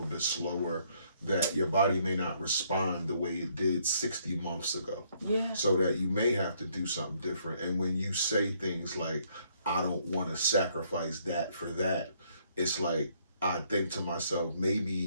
bit slower, that your body may not respond the way it did 60 months ago? Yeah. So that you may have to do something different. And when you say things like, I don't want to sacrifice that for that, it's like, I think to myself,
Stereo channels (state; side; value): inverted; both; correlation -0.68